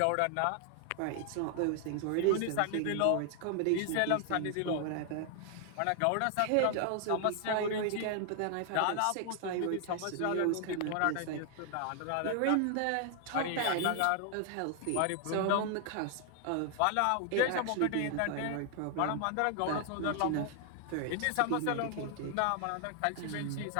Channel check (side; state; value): both; different; correlation 0.00